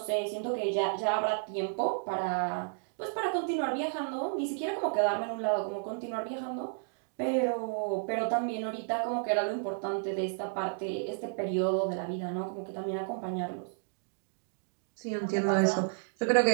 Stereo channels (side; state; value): left; silent; digital silence